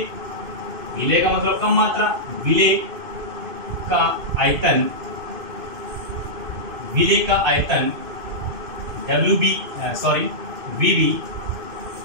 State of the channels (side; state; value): left; late; 2.5 ms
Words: का मतलब कम मात्रा, विलेय का आयतन